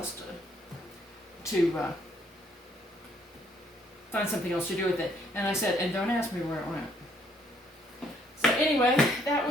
to find something else to do with it. And I said, and don't ask me where it went. So anyway, that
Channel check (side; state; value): both; normal; correlation 0.67